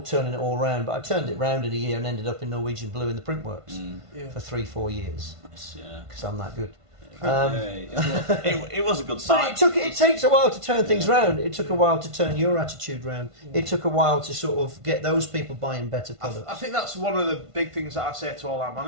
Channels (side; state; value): left; late; 1.5 ms